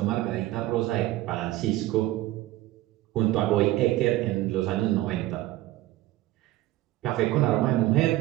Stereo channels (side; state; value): left; quieter; 16.3 dB